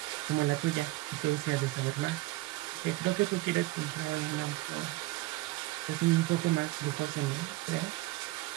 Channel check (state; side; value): quieter; left; 19.1 dB